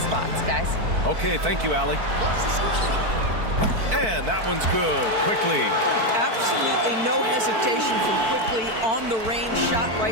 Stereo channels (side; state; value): left; late; 4.5 ms